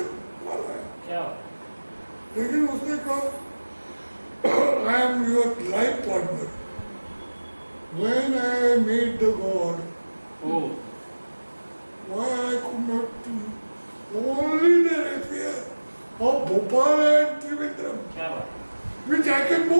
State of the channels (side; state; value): both; inverted; correlation -1.00